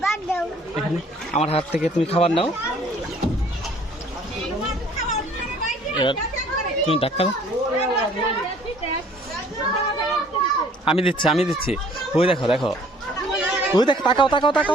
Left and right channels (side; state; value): both; normal; correlation 0.56